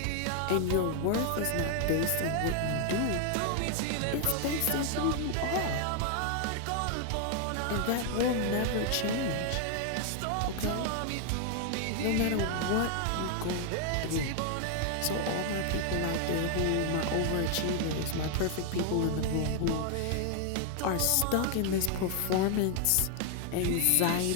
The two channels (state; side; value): different; both; correlation 0.00